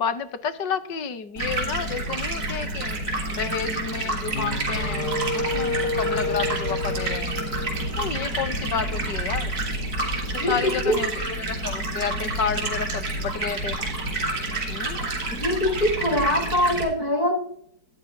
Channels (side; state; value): right; late; 4.6 ms